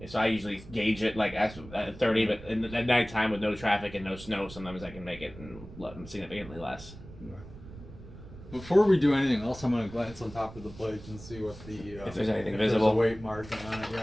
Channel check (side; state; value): right; noise; rumble, 16 dB below the sound